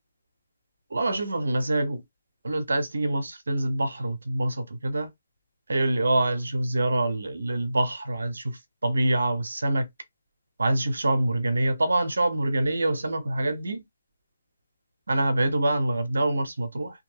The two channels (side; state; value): both; inverted; correlation -0.93